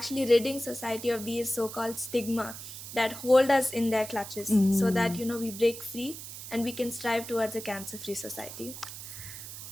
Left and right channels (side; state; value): right; noise; hiss, 11 dB below the sound